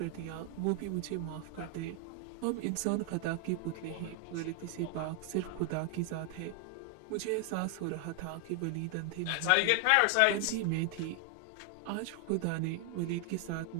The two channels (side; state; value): both; different; correlation 0.00